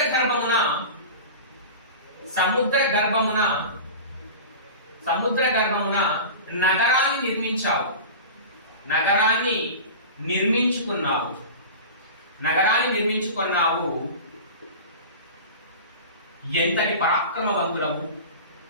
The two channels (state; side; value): inverted; both; correlation -0.32